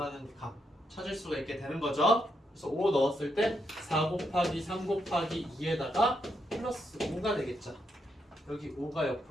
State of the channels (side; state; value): both; normal; correlation 0.80